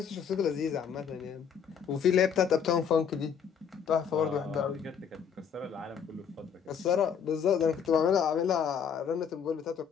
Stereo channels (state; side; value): quieter; right; 7.3 dB